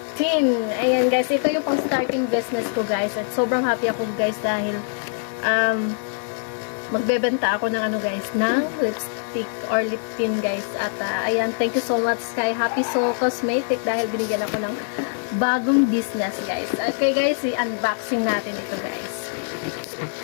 Tin. Ayan guys, ito yung pang starting business ko guys. At sobrang happy ako guys dahil magbebenta ako ng ano guys, ng lipstick or lip tint guys. At ayan, thank you so much kay Happy Soul Cosmetic dahil binigyan ako ng bagong business guys. Okay guys, i-unboxing natin ito guys.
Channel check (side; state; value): right; silent; 63 dB below the other